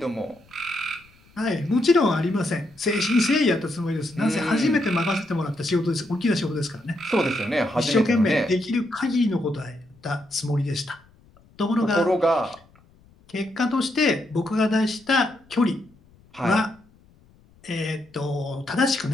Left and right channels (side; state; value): left; noise; rumble, 29 dB below the sound